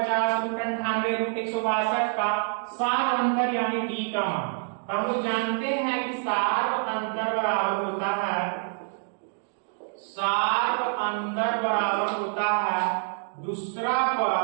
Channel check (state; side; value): silent; left; digital silence